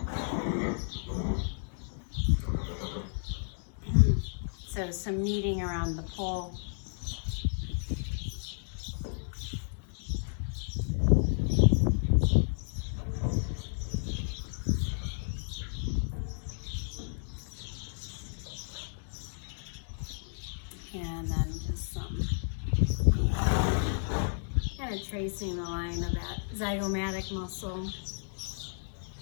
So some kneading around the pole. And then just some kind of tracing the line of that zygomatic muscle.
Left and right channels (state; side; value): silent; right; digital silence